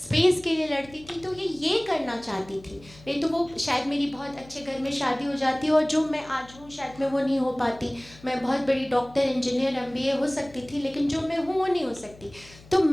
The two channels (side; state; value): left; noise; hum, 22 dB below the sound